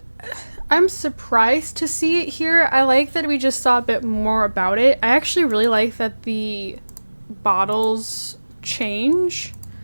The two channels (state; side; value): inverted; both; correlation -1.00